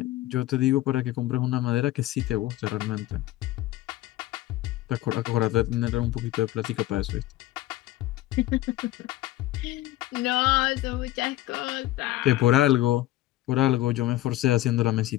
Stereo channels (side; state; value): right; quieter; 16.0 dB